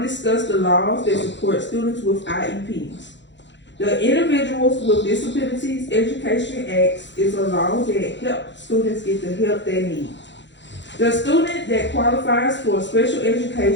the laws that support students with IEPs. The Individuals with Disabilities Education Act is a law that helps students get the help they need. The student that qualifies for special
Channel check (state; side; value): late; right; 0.52 ms